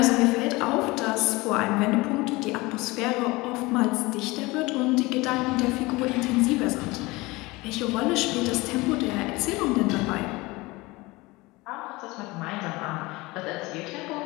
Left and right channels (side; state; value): right; quieter; 22.3 dB